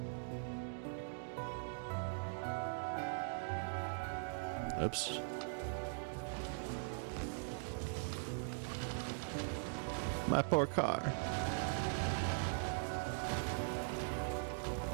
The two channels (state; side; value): silent; left; digital silence